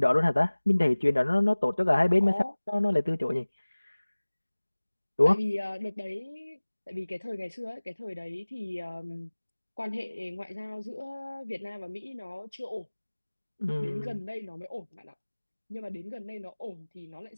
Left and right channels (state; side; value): inverted; both; correlation -1.00